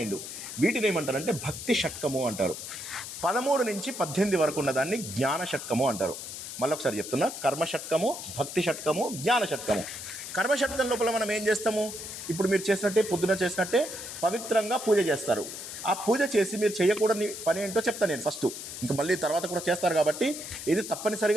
వీటిని ఏమంటారంటే భక్తి షట్కము అంటారు. 13 నుంచి 18 వరకు ఉన్నదాన్ని జ్ఞాన షట్కము అంటారు. మళ్ళీ ఒకసారి చెప్తున్నా, కర్మ షట్కము, భక్తి షట్కము, జ్ఞాన షట్కము. కర్మ షట్కం లోపల మనం ఏం చేస్తాము? ఇప్పుడు మీరు చేసినట్టే, పొద్దున చేసినట్టే పవిత్రంగా పూజ చేస్తారు. ఆ పూజ చేసి మీరు చేయకూడని పని ఏంటో చెప్తాను నేను ఫస్ట్. ఇంకా మళ్ళీ తర్వాత కూడా చేస్తారు కాబట్టి ఇది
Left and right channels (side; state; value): left; noise; hiss, 9 dB below the sound